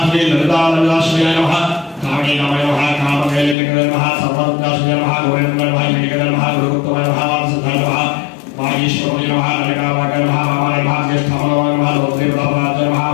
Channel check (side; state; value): right; drops out; at 3.6 s